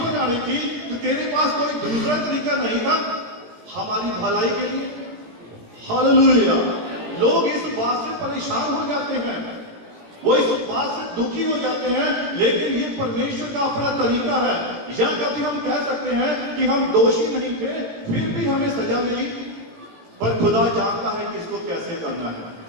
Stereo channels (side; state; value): left; late; 18 ms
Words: आनी थी, तो तेरे पास कोई दूसरा तरीका नहीं था हमारी भलाई के लिए। हालेलुया। लोग इस बात से परेशान हो जाते हैं, वो इस बात से दुखी हो जाते हैं, लेकिन ये परमेश्वर का अपना तरीका है। या कभी हम कह सकते हैं कि हम दोषी नहीं थे, फिर भी हमें सजा मिली, पर खुदा जानता है कि इसको कैसे करना है।